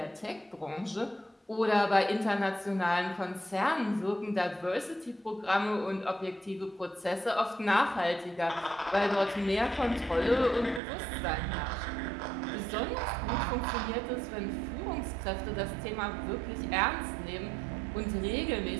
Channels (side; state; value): left; drops out; at 10.8 s